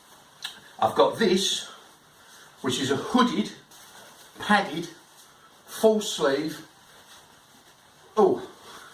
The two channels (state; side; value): identical; both; correlation 1.00